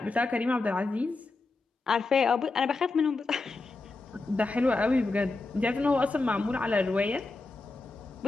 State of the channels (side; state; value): right; quieter; 3.5 dB